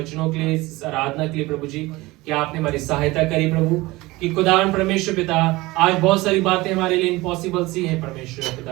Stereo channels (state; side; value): quieter; left; 20.7 dB